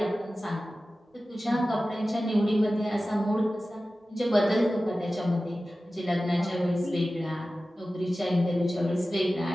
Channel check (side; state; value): both; normal; correlation 0.95